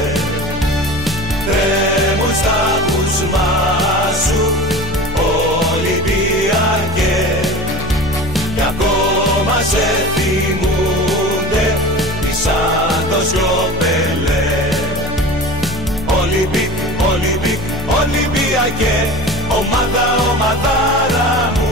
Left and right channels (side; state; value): both; normal; correlation 0.36